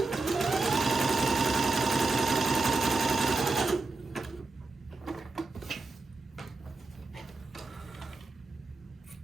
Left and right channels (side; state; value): left; quieter; 3.4 dB